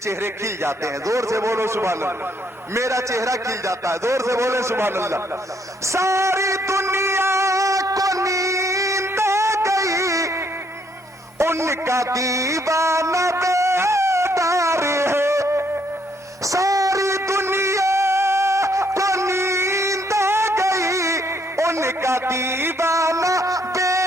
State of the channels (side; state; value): both; normal; correlation 0.70